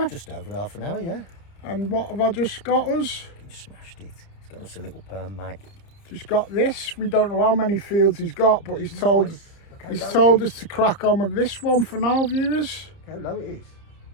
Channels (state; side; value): late; right; 30 ms